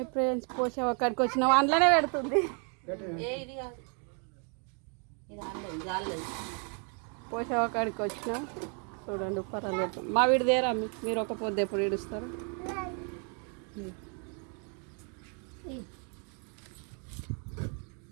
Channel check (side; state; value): left; quieter; 39.6 dB